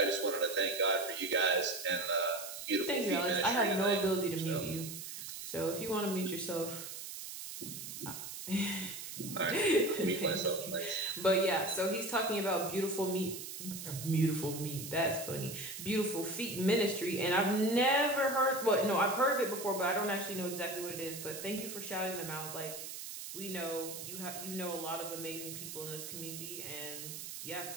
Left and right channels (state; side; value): noise; right; hiss, 9 dB below the sound